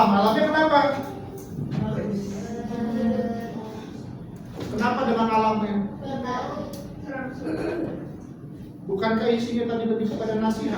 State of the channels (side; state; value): both; identical; correlation 1.00